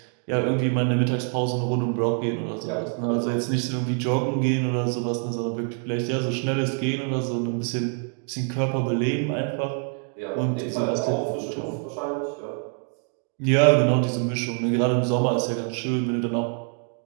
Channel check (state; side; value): quieter; left; 39.3 dB